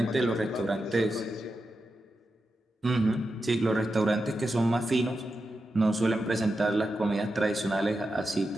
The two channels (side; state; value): both; normal; correlation 0.89